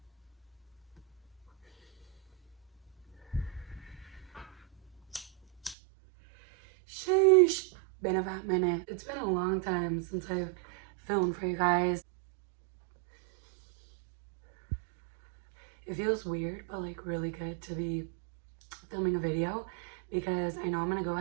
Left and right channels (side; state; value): left; drops out; at 5.8 s